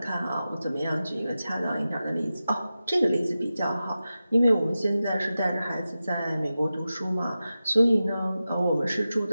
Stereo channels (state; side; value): inverted; both; correlation -0.93